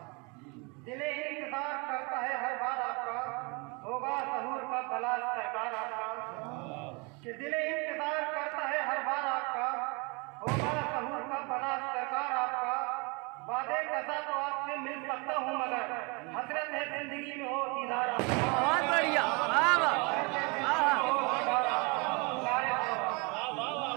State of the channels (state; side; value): quieter; left; 30.2 dB